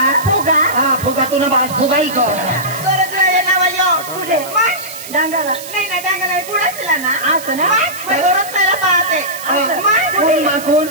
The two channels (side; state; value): right; noise; hiss, 13 dB below the sound